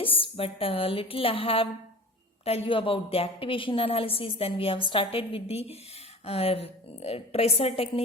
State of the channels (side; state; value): both; normal; correlation 0.37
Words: but little I have tell you about the activation analysis. Then we have started with the uh, tracer